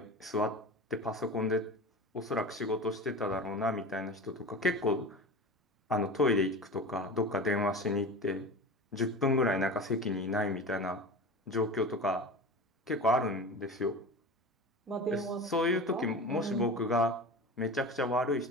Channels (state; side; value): normal; both; correlation 0.32